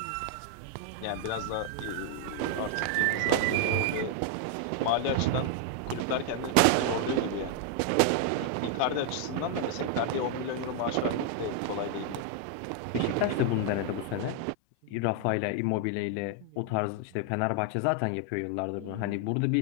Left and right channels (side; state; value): both; different; correlation 0.00